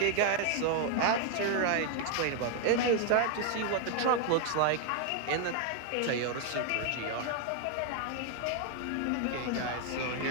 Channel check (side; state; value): both; different; correlation 0.00